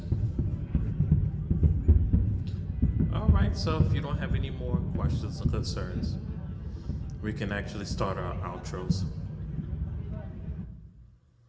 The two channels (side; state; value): both; identical; correlation 1.00